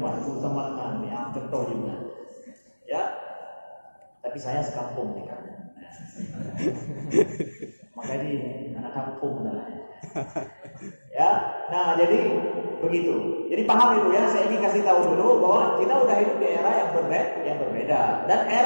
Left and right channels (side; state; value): both; inverted; correlation -1.00